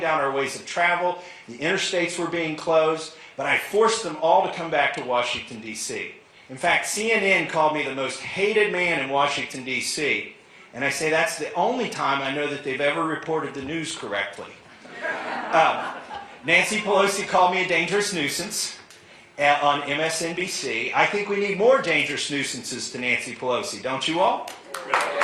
our ways of travel, the interstates were being closed, but I forced them all to come back to Washington, D.C. In fact, CNN called me the most hated man in Washington, D.C., and I say that's the only time I know that they've ever reported the news correctly. Nancy Pelosi called me a dangerous nuisance on MSNBC. I think we need more dangerous nuisances to Nancy Pelosi, don't you all?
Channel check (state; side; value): identical; both; correlation 1.00